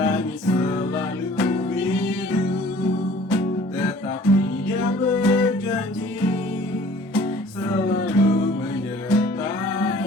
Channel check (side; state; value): both; normal; correlation 0.51